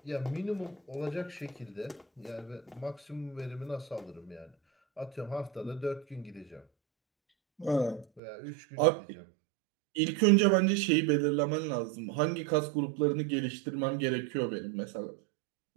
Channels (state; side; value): drops out; left; at 8.2 s